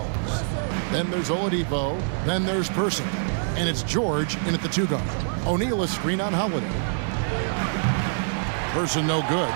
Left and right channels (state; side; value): silent; left; digital silence